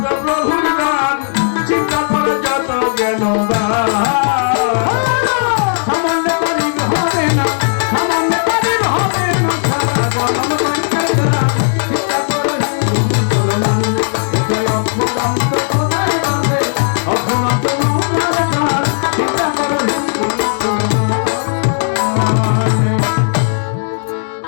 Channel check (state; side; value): silent; right; digital silence